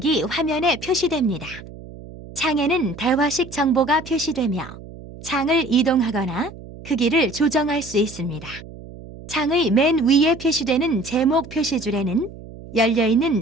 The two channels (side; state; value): right; noise; hum, 16 dB below the sound